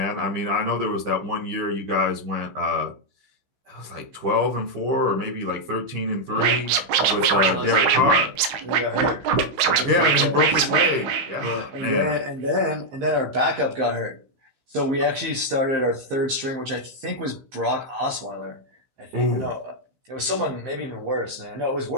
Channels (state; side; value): late; left; 15 ms